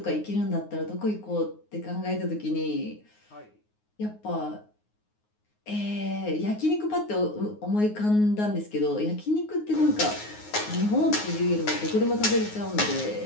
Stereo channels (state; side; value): late; right; 9.5 ms